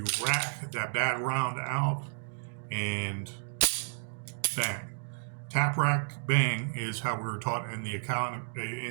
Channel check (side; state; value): left; silent; digital silence